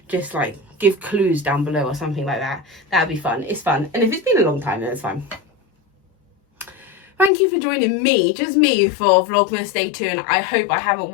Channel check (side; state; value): right; drops out; at 7.3 s